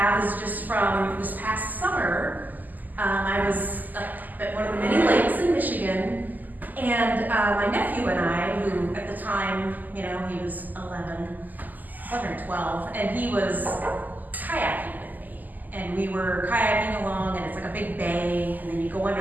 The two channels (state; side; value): late; left; 0.084 ms